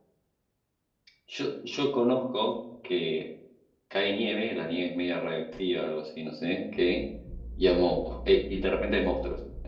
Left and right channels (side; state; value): both; identical; correlation 1.00